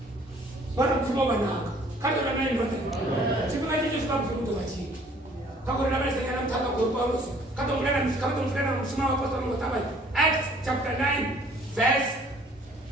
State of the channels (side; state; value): both; normal; correlation 0.56